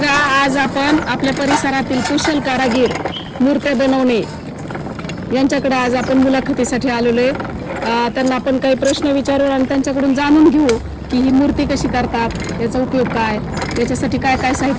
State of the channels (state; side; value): identical; both; correlation 1.00